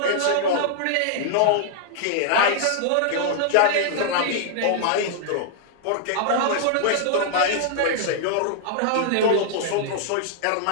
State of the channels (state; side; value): different; both; correlation -0.01